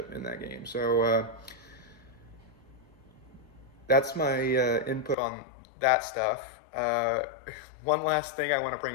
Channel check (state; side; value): drops out; right; at 5.2 s